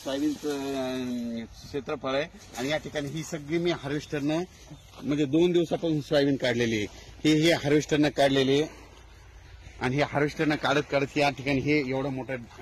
क्षेत्रफळ आहे आणि या ठिकाणी ही सगळी मी हार्वेस्टरनं म्हणजे 2 दिवसापासून सोयाबीन काढलेली आहे. हे हार्वेस्टरनं काढलेली आहे आणि हे हार्वेस्टरनं काढत या ठिकाणी हे एवढं मोठं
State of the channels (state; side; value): identical; both; correlation 1.00